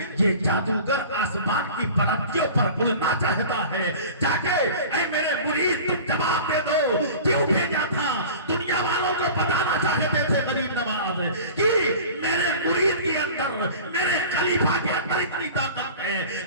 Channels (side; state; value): both; inverted; correlation -0.40